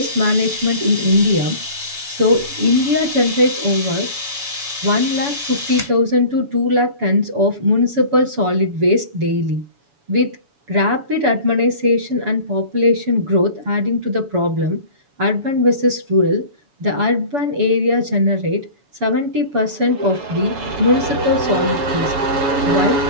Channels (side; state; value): left; late; 7.0 ms